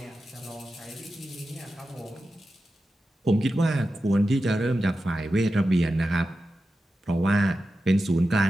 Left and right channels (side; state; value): both; normal; correlation 0.92